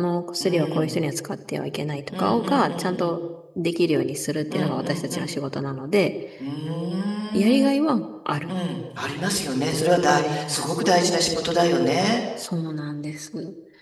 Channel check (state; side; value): identical; both; correlation 1.00